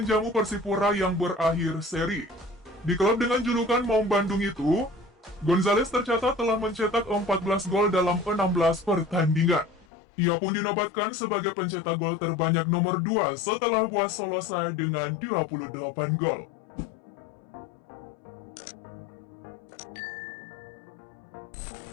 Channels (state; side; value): drops out; right; at 9.9 s